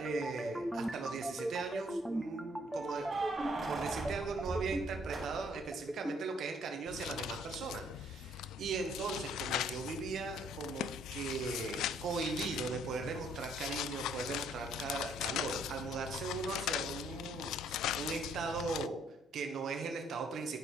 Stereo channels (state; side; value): normal; both; correlation 0.65